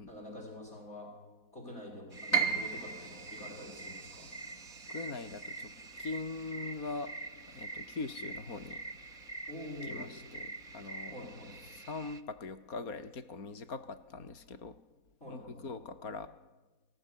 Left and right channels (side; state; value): right; late; 4.1 ms